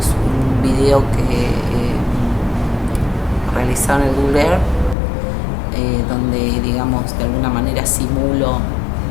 un video que realizaron en el Google Earth, donde, digamos, de alguna manera simulo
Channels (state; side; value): drops out; right; at 5.0 s